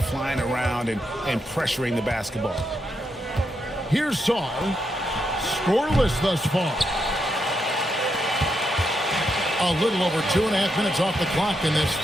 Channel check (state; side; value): normal; both; correlation 0.82